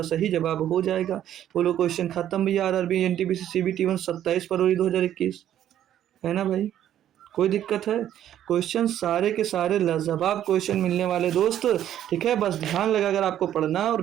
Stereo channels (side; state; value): left; quieter; 11.2 dB